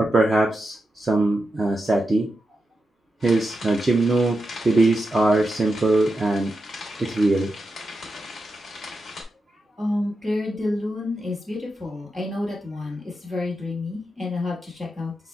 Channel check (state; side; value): normal; both; correlation 0.88